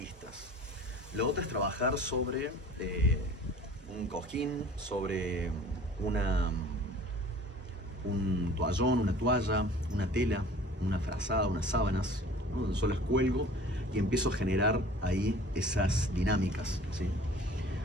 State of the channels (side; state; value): both; normal; correlation 0.46